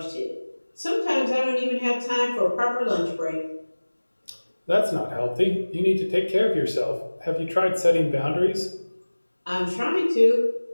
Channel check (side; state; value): both; inverted; correlation -1.00